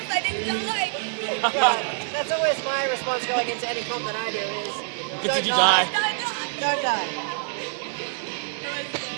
I didn't die. Well, that's always my response going into any comp that I do is, don't die. Don't die.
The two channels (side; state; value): left; silent; digital silence